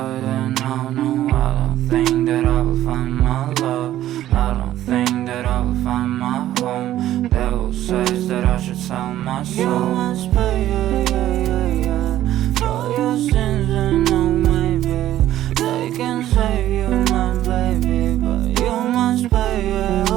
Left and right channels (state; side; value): quieter; left; 13.2 dB